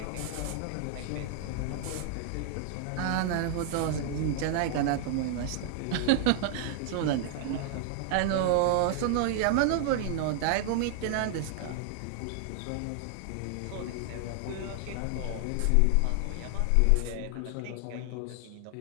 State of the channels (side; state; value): both; different; correlation 0.00